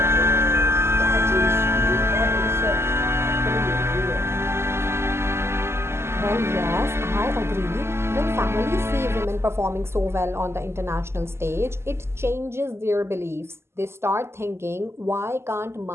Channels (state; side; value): late; left; 0.12 ms